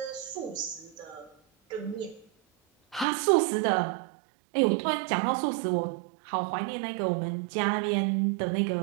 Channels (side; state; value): left; drops out; at 3.1 s